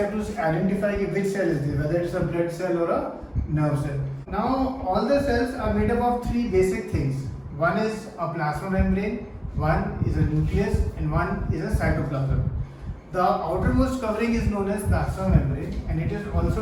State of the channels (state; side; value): identical; both; correlation 1.00